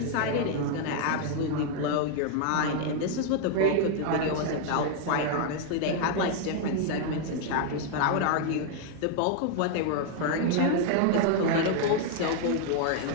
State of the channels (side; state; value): both; different; correlation 0.00